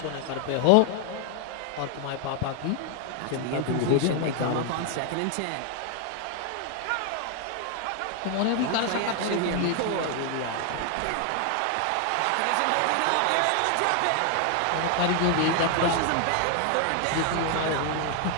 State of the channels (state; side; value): different; both; correlation 0.00